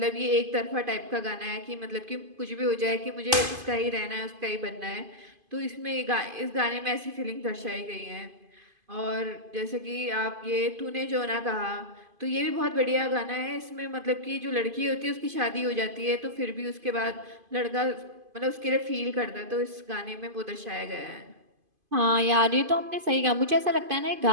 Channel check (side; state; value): left; late; 2.5 ms